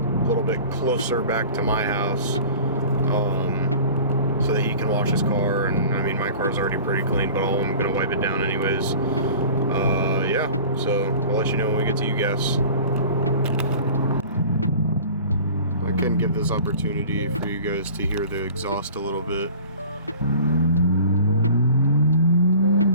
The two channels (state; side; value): inverted; both; correlation -0.42